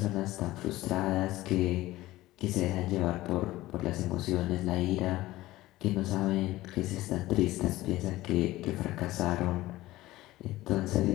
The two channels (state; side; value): quieter; right; 17.1 dB